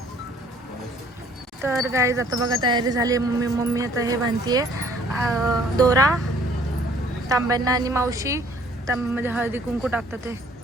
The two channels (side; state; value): both; normal; correlation 0.58